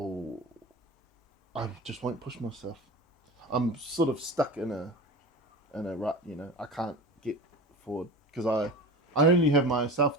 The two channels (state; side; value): normal; both; correlation 0.31